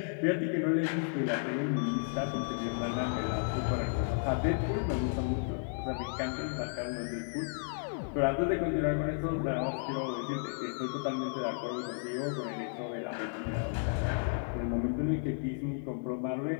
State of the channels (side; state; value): right; silent; digital silence